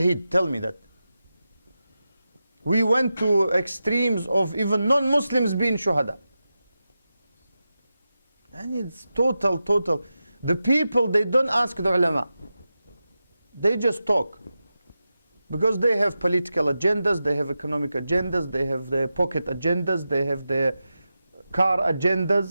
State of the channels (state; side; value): inverted; both; correlation -0.91